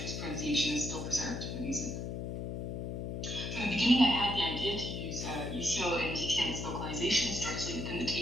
pronunciation is still preserved in the music. From the beginning, I had the idea to use Liu Xiu and Jiqian's localizations directly within the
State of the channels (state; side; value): noise; left; hum, 4 dB below the sound